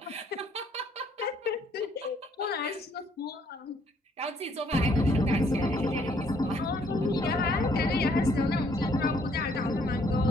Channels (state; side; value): normal; both; correlation 0.66